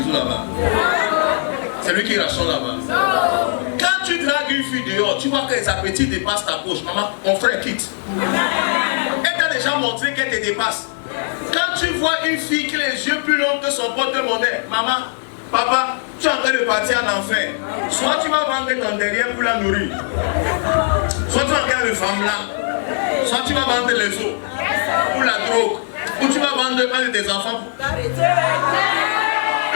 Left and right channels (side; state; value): right; silent; digital silence